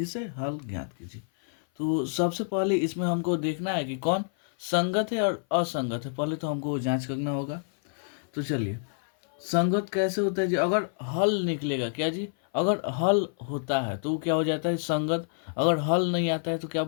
से हल ज्ञात कीजिए। तो सबसे पहले इसमें हमको देखना है कि कौन संगत है और असंगत है। पहले तो हमको जांच करना होगा। तो चलिए, संगत कैसे होता है जी? अगर हल निकलेगा क्या जी? अगर हल होता है तो वो क्या हो जाता है? संगत। अगर हल नहीं आता है तो क्या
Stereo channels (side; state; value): right; silent; 56 dB below the other